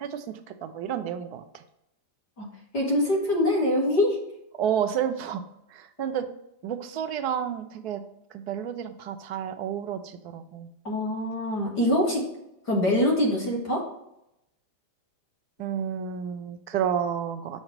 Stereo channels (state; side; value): late; right; 5.0 ms